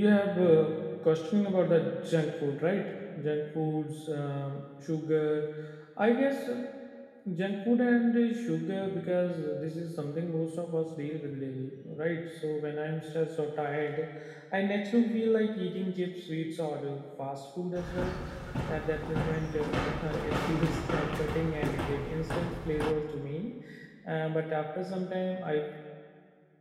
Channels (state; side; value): identical; both; correlation 1.00